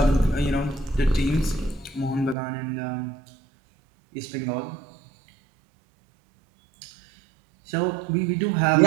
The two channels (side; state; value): left; drops out; at 2.4 s